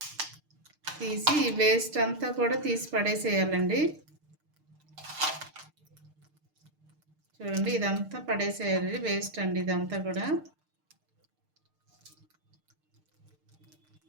తీసి ఈ వేస్ట్ అంతా కూడా తీసి పడేసేయాలండి. చూడండి, ఇదంతా పడేసేయాలి, వేస్ట్ అండి ఇదంతా కూడా.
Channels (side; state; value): left; late; 6.6 ms